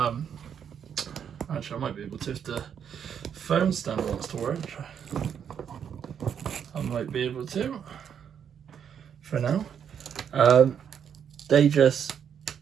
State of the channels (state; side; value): quieter; left; 8.1 dB